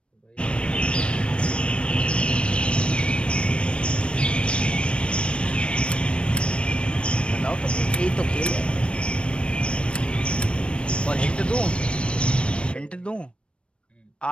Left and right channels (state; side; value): late; right; 0.058 ms